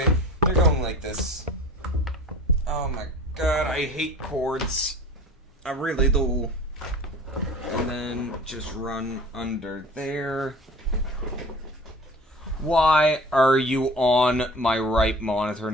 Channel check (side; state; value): both; normal; correlation 0.42